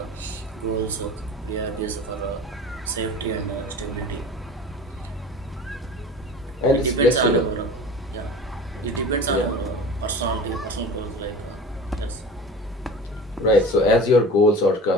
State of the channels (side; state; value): both; normal; correlation 0.37